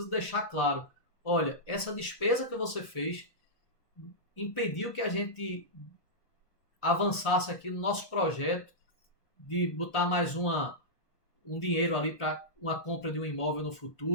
deixar claro, olha, essa despesa que você fez impediu que a gente avançasse aqui no nosso projeto de botar mais um dinheiro ali para uma compra de um imóvel no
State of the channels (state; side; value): late; right; 1.3 ms